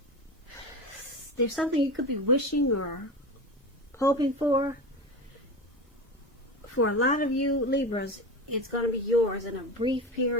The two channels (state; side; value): normal; both; correlation 0.26